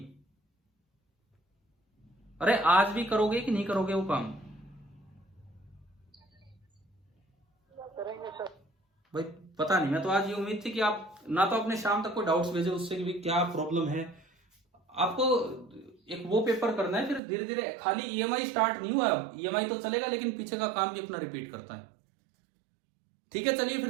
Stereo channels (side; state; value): left; drops out; at 17.2 s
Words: अरे आज भी करोगे कि नहीं करोगे वो काम? करेंगे सर। भाई पता नहीं, मैं तो आज ये उम्मीद थी कि आप ना तो अपने शाम तक कोई डाउट्स भेजे उससे कि भी क्या प्रॉब्लम है। आपको एक वो पेपर करना है, फिर धीरे धीरे, खाली EMI स्टार्ट नहीं हुआ। अब EMI तो चलेगा लेकिन पीछे का काम भी अपना रिपीट करता है। ठीक है, चलिए फिर